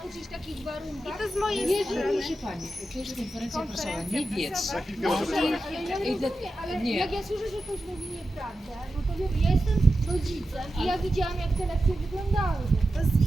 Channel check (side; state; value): both; normal; correlation 0.91